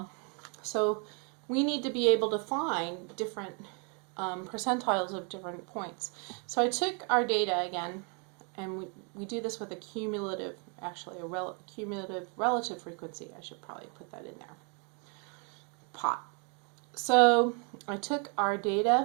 so we need to be able to find different percentiles of different points. So I took our data again, and we do this with a cumulative, actually cumulative relative frequency. I should probably put that in there. Pot. So I took our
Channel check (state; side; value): quieter; left; 37.3 dB